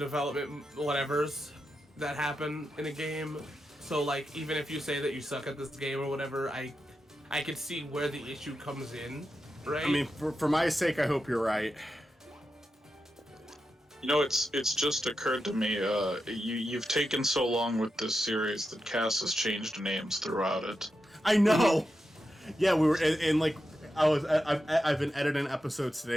whatevers that happen in a game. So like even if you say that you suck at this game or whatever, I could see where the issue comes in, right? I mean, for my sake, I hope you're right. You know, it's just occurred to me, you've taken so long with this series that Cass has changed names throughout it. I know! Yeah, we were, and like, I've been editing episodes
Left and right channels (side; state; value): both; normal; correlation 0.88